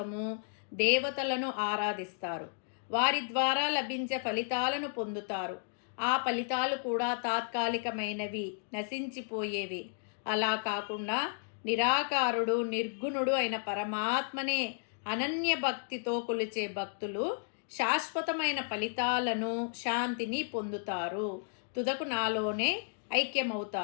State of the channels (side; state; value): right; silent; digital silence